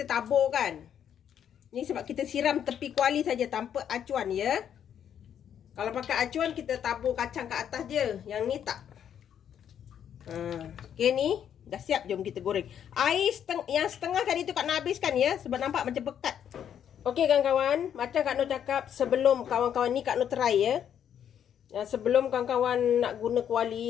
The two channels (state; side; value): quieter; right; 9.2 dB